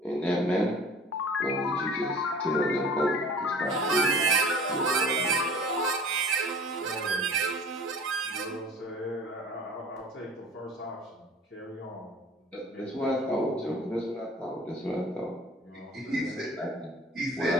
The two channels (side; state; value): both; normal; correlation 0.43